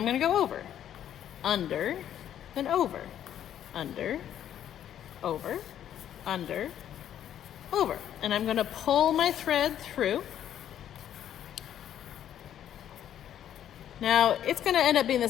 going to go over. Under, then over. Under, over, under, over. And I'm going to pull my thread through. Now it's going to end up being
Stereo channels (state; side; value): quieter; right; 10.5 dB